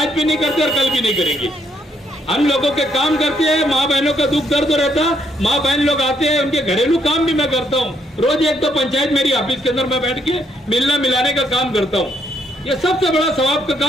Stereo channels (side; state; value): both; normal; correlation 0.73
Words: भी नहीं करते और कल भी नहीं करेंगे। हम लोगों के काम करते हैं, माँ बहनों का दुख दर्द रहता, माँ बहन लोग आते हैं, उनके घरेलू काम भी मैं करता हूँ। रोज एक तो पंचायत मेरी ऑफिस के अंदर मैं बैठ के मिलना मिलाने का काम करता हूँ। ये सबसे बड़ा सवाब का